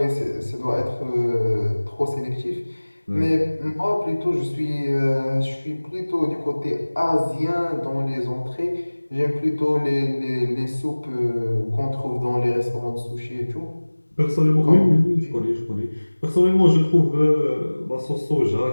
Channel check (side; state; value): both; inverted; correlation -1.00